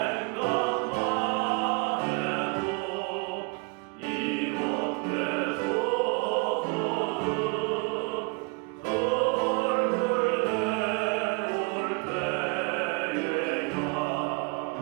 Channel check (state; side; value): quieter; left; 32.0 dB